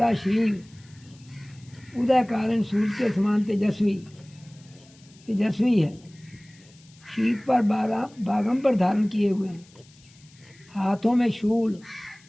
शरीर, उदय कारण सूर्य के समान तेजस्वी है। शीत पर बागंबर धारण किए हुए हैं, हाथों में शूल,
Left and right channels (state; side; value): noise; left; hiss, 27 dB below the sound